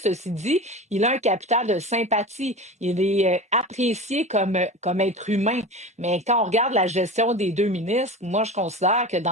dit, il a un capital de sympathie. Il est apprécié comme être humain. Mais quand on regarde la gestion des deux ministres, moi, je considère que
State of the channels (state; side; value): normal; both; correlation 0.31